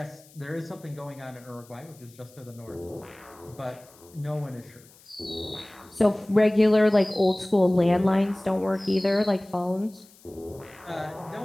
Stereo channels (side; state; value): left; noise; hiss, 26 dB below the sound